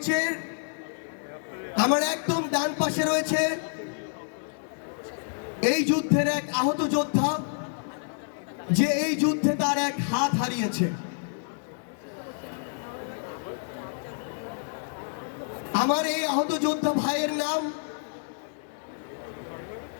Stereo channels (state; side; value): silent; right; digital silence